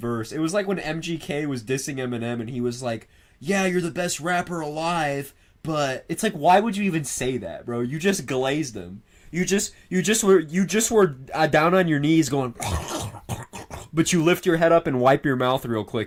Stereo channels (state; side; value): identical; both; correlation 1.00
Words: It was like when MGK was dissing Eminem and he was like, yeah, you're the best rapper alive, but it's like, why would you even say that, bro? You just glazed him. You just were down on your knees going, but you lift your head up and wipe your mouth real